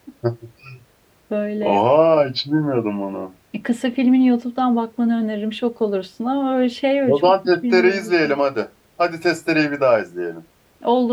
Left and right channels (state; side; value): identical; both; correlation 1.00